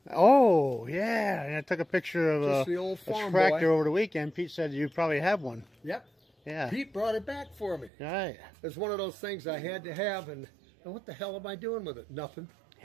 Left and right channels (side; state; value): left; drops out; at 7.9 s